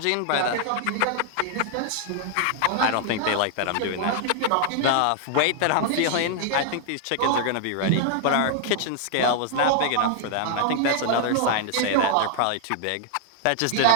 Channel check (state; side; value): different; both; correlation -0.01